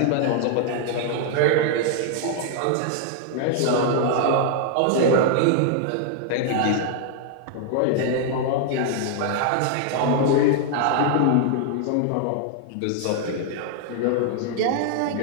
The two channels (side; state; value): both; different; correlation 0.00